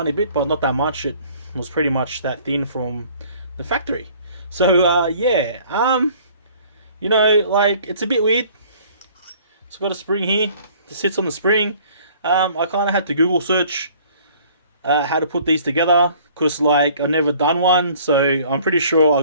bit, but not that much. It was pretty much that thin from the factory. So yeah, you know, like, it's a bit weird. It's got a spring here that sits on the spring. I kind of had to Google search how to put these together, because like I've never done one, so I'm pretty sure I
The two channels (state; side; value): inverted; both; correlation -0.54